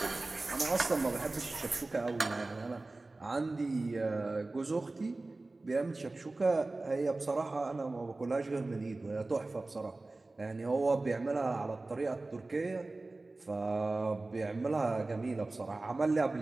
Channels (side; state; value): left; quieter; 3.2 dB